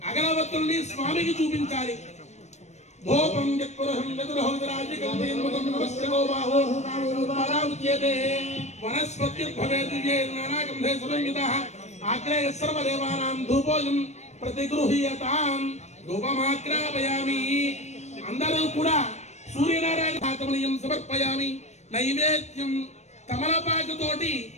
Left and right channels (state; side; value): late; right; 0.33 ms